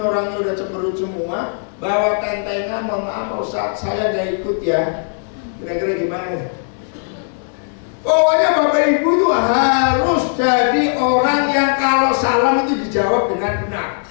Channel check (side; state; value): right; silent; 67 dB below the other